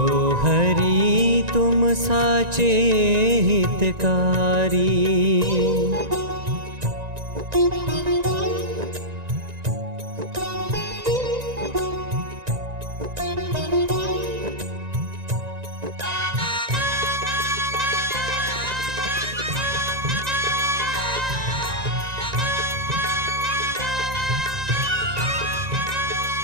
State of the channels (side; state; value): left; late; 1.9 ms